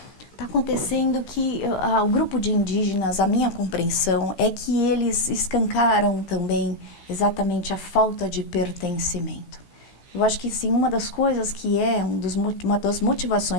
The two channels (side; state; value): right; late; 16 ms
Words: Está acontecendo que o grupo de indígenas, a minha compreensão, é que eles escancaram também exatamente a falta de pertencimento. Eu acho que sim, uma das coisas que é uma das